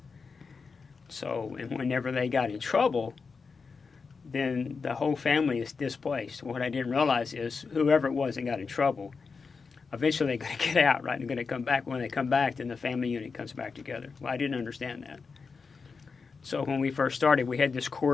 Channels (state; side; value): quieter; right; 4.9 dB